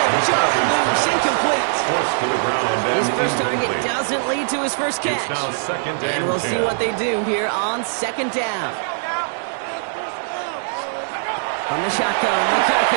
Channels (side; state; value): left; silent; digital silence